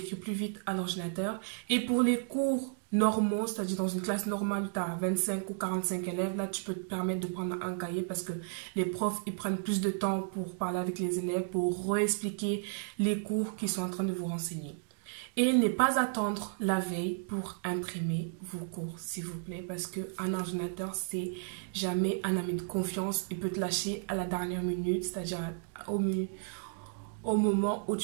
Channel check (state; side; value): silent; left; digital silence